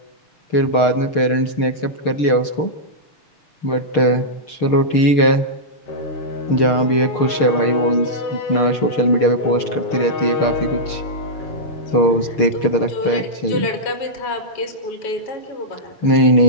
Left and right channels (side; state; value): right; late; 6.6 ms